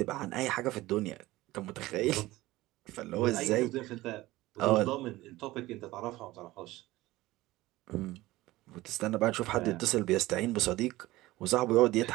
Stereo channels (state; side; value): quieter; left; 18.1 dB